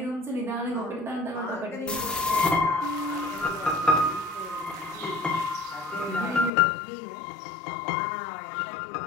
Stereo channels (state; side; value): drops out; right; at 6.5 s